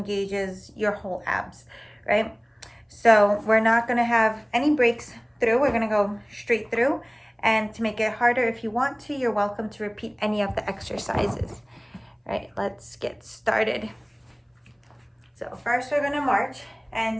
your whole abs, right? So we're not going to have any breaks through. We're going to go straight through. And to make it harder, if you want to, you're welcome to repeat any of the exercises. All right, let's get started. So first we're going to march.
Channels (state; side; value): identical; both; correlation 1.00